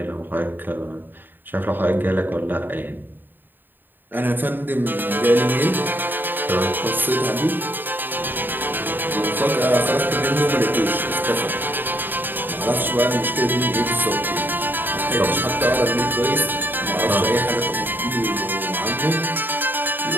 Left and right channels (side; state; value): left; late; 0.093 ms